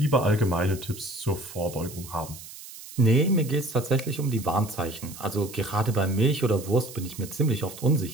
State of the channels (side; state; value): right; noise; hiss, 15 dB below the sound